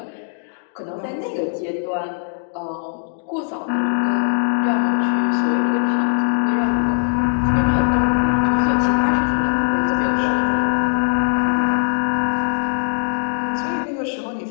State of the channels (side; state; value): right; silent; digital silence